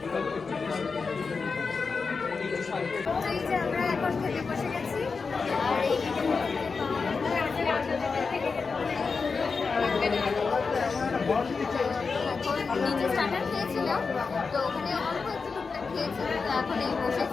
এই যে আমরা এখন খেতে বসে গেছি, আর এই নিচে স্টার্টার খেয়েছিলাম, তো ওখানে অল্প একটু টুকটাক খেয়েছি। তো এখন এই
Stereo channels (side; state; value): right; quieter; 4.8 dB